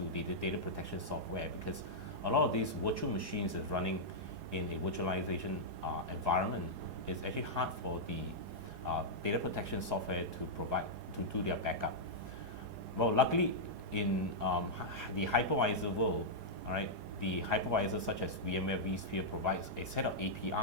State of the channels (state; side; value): late; left; 4.8 ms